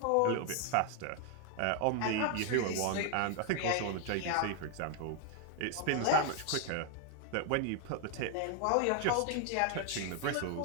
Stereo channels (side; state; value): both; different; correlation 0.00